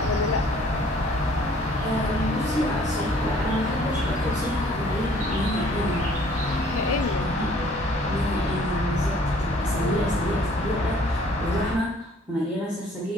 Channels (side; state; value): both; normal; correlation 0.57